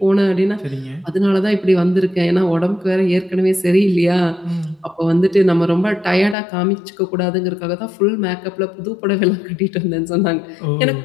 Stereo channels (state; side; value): drops out; right; at 6.4 s